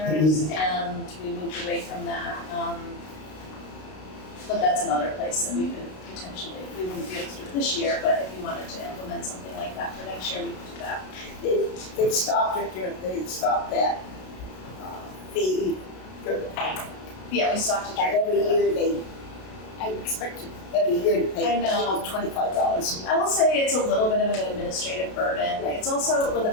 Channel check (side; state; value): right; late; 32 ms